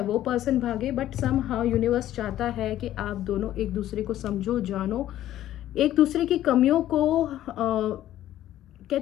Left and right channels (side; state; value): right; quieter; 13.0 dB